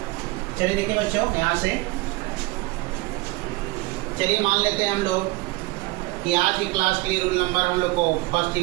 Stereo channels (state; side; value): quieter; left; 21.7 dB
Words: चलिए देखिए बच्चों, यहाँ से चलिए मान लेते हैं हम लोग कि आज की क्लास के लिए रूल नंबर हम लोग को फर्स्ट ही